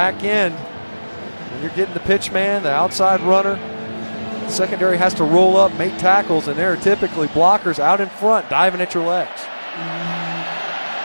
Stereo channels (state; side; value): inverted; both; correlation -1.00